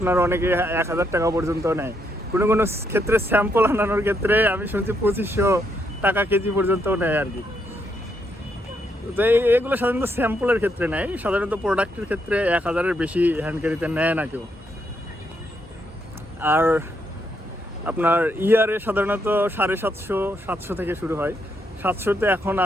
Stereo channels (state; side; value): normal; both; correlation 0.77